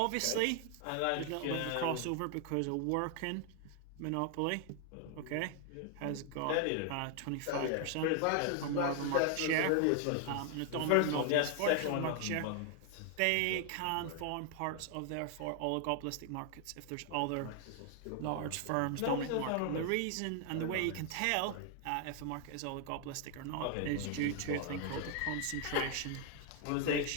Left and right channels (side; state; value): both; different; correlation 0.00